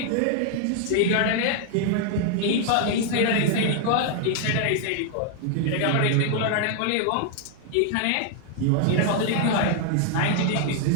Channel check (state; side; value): different; both; correlation 0.00